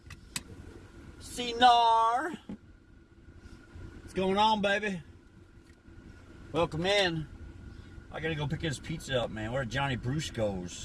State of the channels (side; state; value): both; identical; correlation 1.00